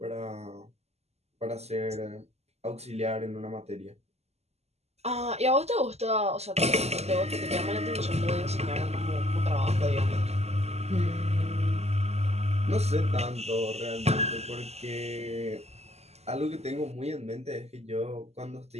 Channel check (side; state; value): left; late; 0.31 ms